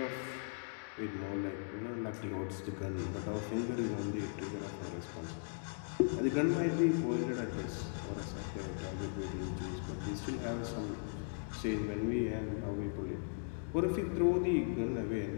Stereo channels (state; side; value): silent; right; digital silence